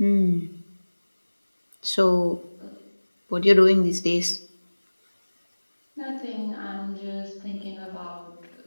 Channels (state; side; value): inverted; both; correlation -1.00